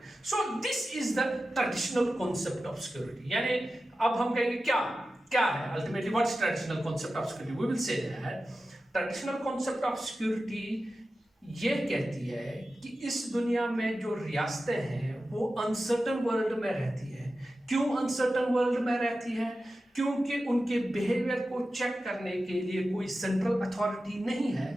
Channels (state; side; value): normal; both; correlation 0.93